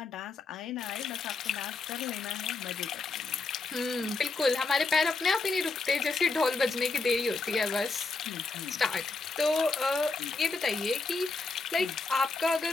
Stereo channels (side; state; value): right; quieter; 3.8 dB